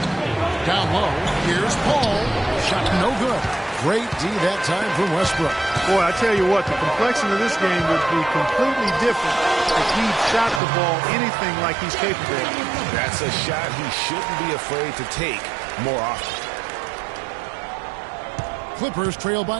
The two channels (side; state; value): left; drops out; at 10.6 s